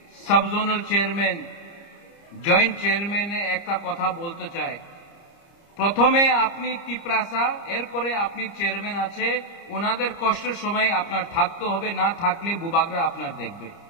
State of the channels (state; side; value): late; right; 30 ms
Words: sub zonal chairman, joint চেয়ারম্যানে একটা কথা বলতে চাই। প্রথমে আপনি ত্রিপুরাসা, এরপরে আপনি চেয়ারম্যান আছে, ওনাদের কষ্টের সময় আপনার থাকতে হবে, না থাকলে বুবাগরা আপনার দেখবে।